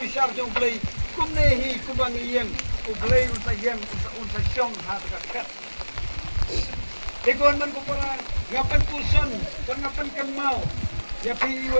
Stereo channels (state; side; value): inverted; both; correlation -1.00